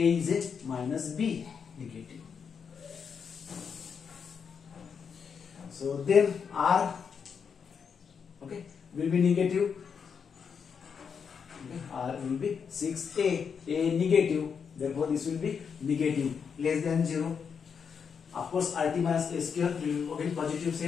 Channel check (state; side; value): quieter; right; 6.5 dB